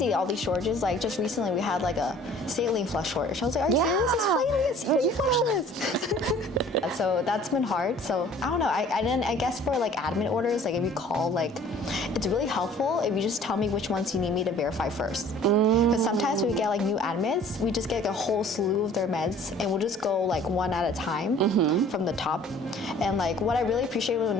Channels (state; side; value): normal; both; correlation 0.51